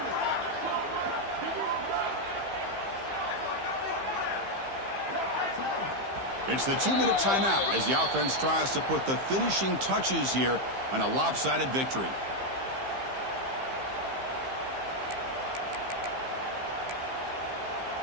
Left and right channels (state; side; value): late; left; 15 ms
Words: It's the 2-minute timeout as the offense tries to put the finishing touches here on a lopsided victory.